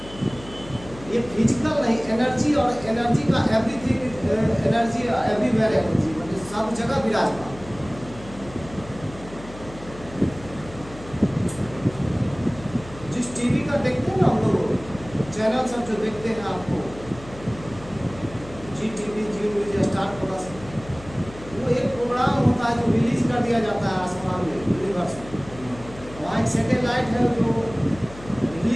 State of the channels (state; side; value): noise; left; hum, 16 dB below the sound